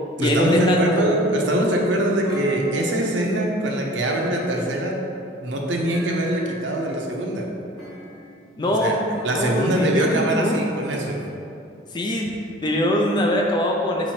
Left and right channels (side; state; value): both; normal; correlation 0.45